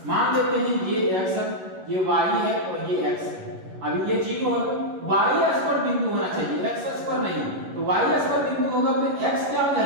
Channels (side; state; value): left; late; 11 ms